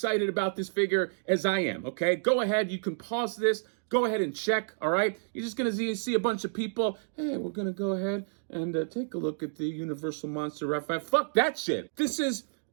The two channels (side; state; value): left; silent; digital silence